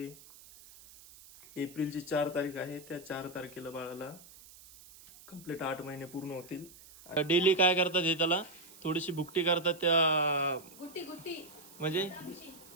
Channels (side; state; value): right; noise; hiss, 21 dB below the sound